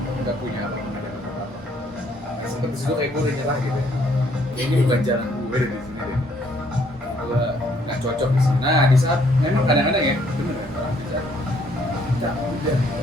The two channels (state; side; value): normal; both; correlation 0.66